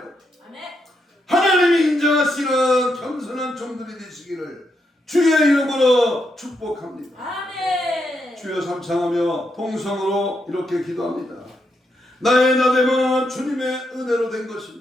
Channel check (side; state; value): both; normal; correlation 0.81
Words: 하나님이 인정하시는 겸손한 종들이 되시기를 주의 이름으로 축복합니다. 아멘. 주여 삼창하며 통성으로 이렇게 기도합니다. 나의 나됨은 주님의 은혜로 된